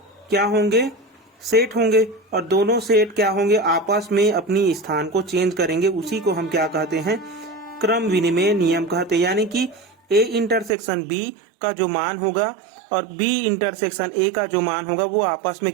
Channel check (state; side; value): drops out; left; at 10.8 s